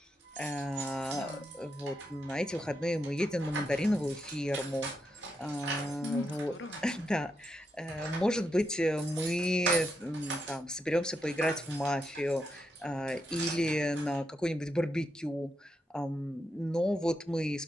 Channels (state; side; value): normal; both; correlation 0.83